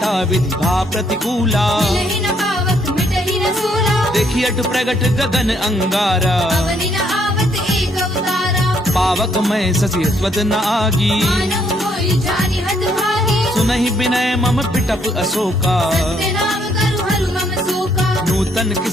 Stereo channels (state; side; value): normal; both; correlation 0.70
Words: विधि भा प्रतिकूला मिलहि न पावक मिटहि न सूला देखी अट प्रगट गगन अंगारा अवनि न आवत एक अवतारा पावक मैं ससी स्वत न आगी मानव मोहि जानि हत भागी सुनहि विनय मम पिटप अशोका सत्य नाम करु हरु मम शोका नूतन